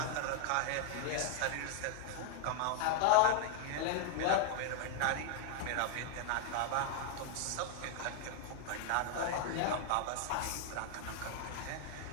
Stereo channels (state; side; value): different; both; correlation 0.00